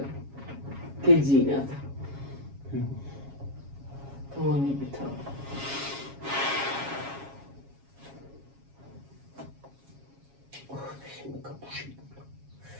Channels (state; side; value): late; left; 7.3 ms